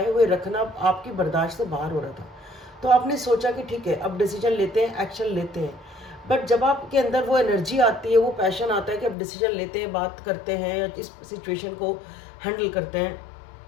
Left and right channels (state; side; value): drops out; right; at 9.2 s